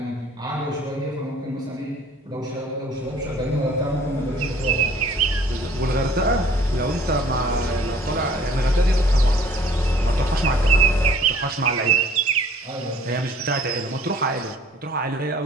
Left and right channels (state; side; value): normal; both; correlation 0.53